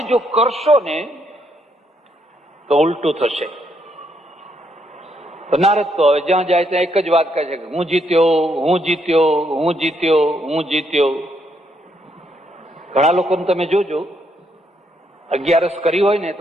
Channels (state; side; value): normal; both; correlation 0.75